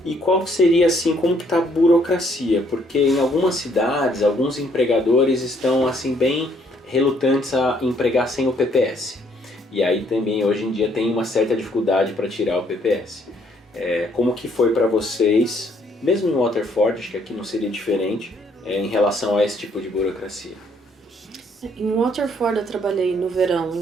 E qual que seria assim, como que está a burocracia? Porque em algumas cidades, alguns empregadores estão assim bem relutantes a empregar sem o PPS. E aí também hoje em dia tem uma certa dificuldade para tirar o PPS. Como que foi para vocês, mesmo em Waterford, acho que aqui não seria diferente, em relação a esse tipo de burocracia? Em Waterford eu trabalhei no verão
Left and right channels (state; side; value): normal; both; correlation 0.66